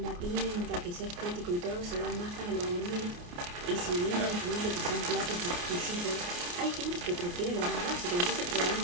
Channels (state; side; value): late; left; 28 ms